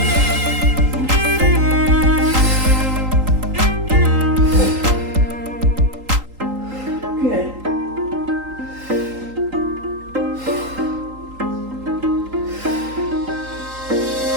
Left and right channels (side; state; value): left; late; 3.8 ms